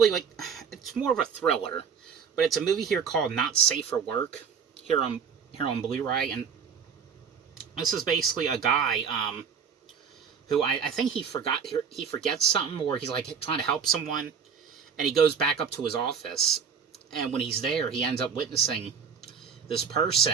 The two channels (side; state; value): left; quieter; 6.7 dB